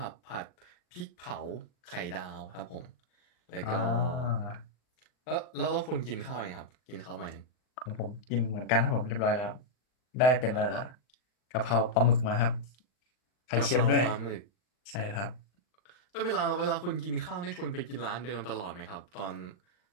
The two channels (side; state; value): right; late; 39 ms